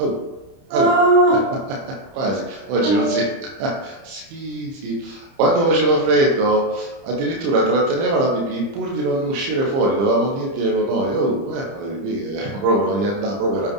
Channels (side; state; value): left; late; 30 ms